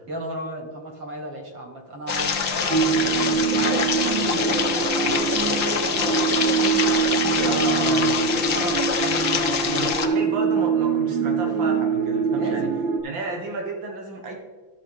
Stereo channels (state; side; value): late; left; 5.8 ms